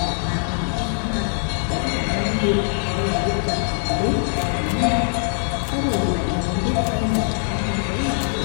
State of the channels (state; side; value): silent; right; 64 dB below the other